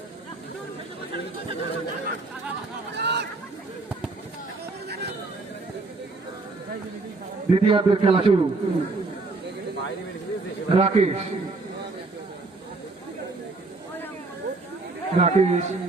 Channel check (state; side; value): quieter; left; 3.5 dB